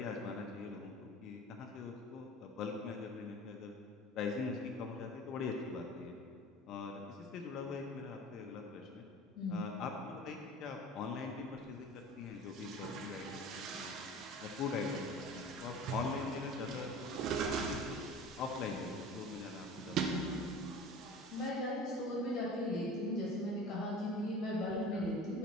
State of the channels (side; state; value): both; normal; correlation 0.39